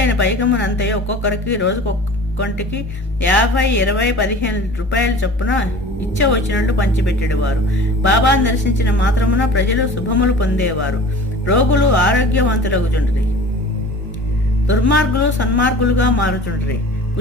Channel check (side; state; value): both; normal; correlation 0.41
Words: పైకమునంతయో ఒక్కొక్కరికి రోజుకొక్కొంటికి 50, 20, 15 రూపాయల చొప్పున ఇచ్చ వచ్చినట్టు పంచిపెట్టేవారు. బాబాను దర్శించిన మాత్రమున ప్రజలు శుభములు పొందేవారు. రోగులు ఆరోగ్యవంతులగుచుండ్రి, దుర్మార్గులు సన్మార్గులుగా మారుచుండ్రి,